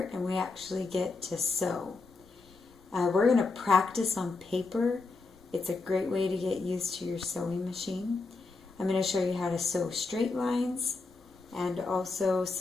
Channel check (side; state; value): right; quieter; 3.9 dB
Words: and we actually get to sew. We're going to practice on paper. It's a great way to get used to your sewing machine. I'm going to show you how to sew straight lines and also